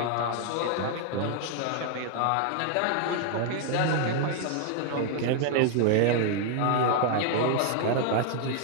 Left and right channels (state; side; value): different; both; correlation 0.00